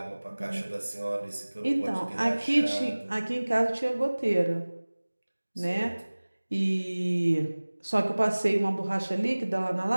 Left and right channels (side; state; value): both; inverted; correlation -1.00